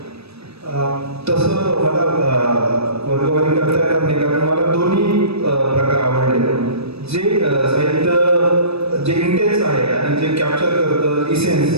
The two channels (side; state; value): left; late; 0.78 ms